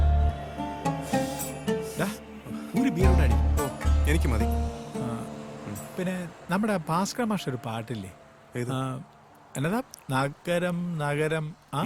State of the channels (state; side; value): identical; both; correlation 1.00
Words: ഒരു ബിയറോടെ അടി. ഓ, എനിക്ക് മതി. പിന്നെ നമ്മുടെ ഭാസ്കർ മാഷ ഒരു പാട്ടില്ലേ, എന്നതാ? നഗരം നഗരം